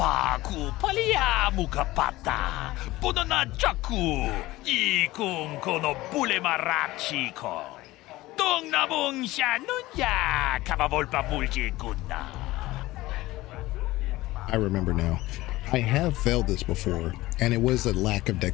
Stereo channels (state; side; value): quieter; right; 18.2 dB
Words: ku palia mukapata. Podana chaku. Ikun kono bule marachiko. Dong nabung shanunya. Kavavolpa mulji kunna. I remember now. I have failed this before, and it was a lack of